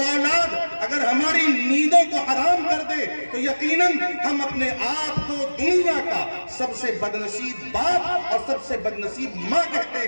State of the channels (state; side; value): inverted; both; correlation -1.00